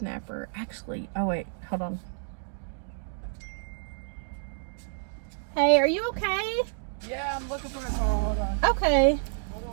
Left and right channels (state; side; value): silent; left; digital silence